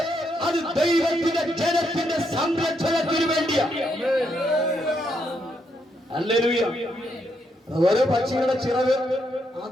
അത് ദൈവത്തിന്റെ ജനത്തിന്റെ സംരക്ഷണത്തിന് വേണ്ടിയാണ്. ഹല്ലേലൂയ. ഓരോ പക്ഷികളുടെ ചിറക്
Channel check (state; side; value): normal; both; correlation 0.78